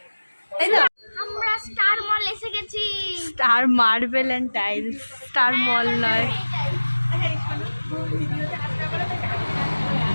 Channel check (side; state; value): both; inverted; correlation -1.00